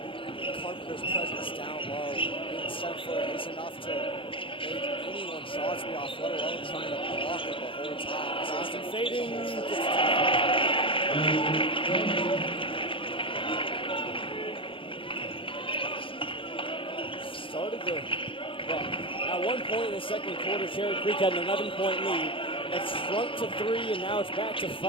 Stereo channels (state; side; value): late; right; 0.25 ms